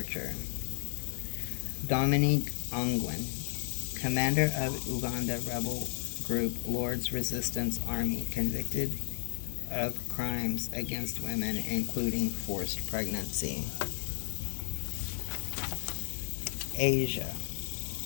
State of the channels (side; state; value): right; silent; digital silence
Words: Dominique Ongwen, Commander of Uganda rebel group Lord's Resistance Army, convicted of crimes against women, including forced pregnancy. Asia.